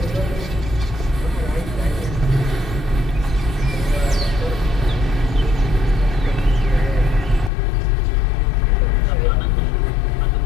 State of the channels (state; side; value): drops out; right; at 7.5 s